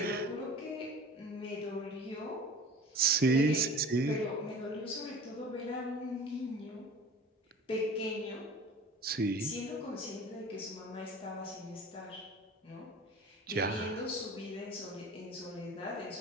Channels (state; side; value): normal; both; correlation 0.40